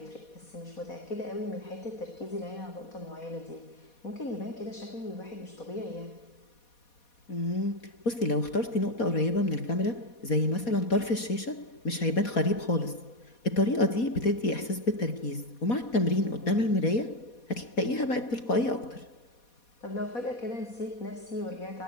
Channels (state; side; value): late; right; 4.2 ms